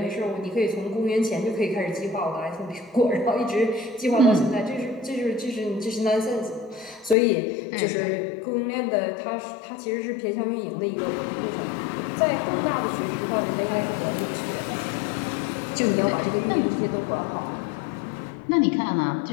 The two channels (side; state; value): right; drops out; at 7.2 s